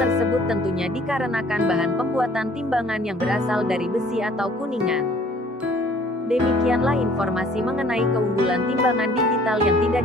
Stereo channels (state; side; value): normal; both; correlation 0.56